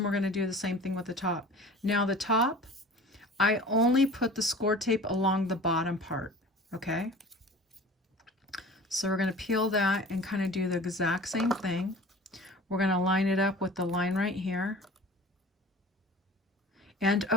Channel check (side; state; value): both; normal; correlation 0.42